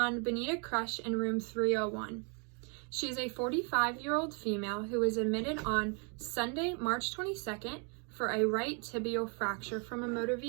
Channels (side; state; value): left; quieter; 37.0 dB